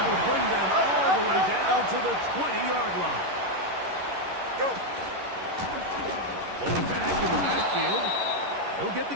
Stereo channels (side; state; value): left; late; 11 ms